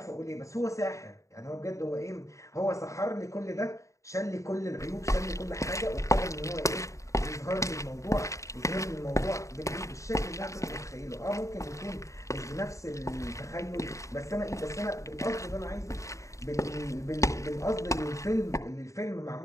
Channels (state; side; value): late; right; 0.15 ms